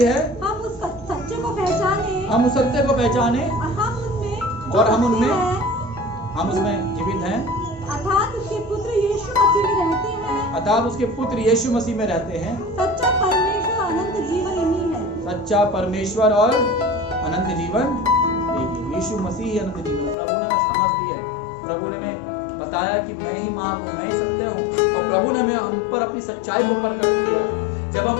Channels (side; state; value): right; drops out; at 20.2 s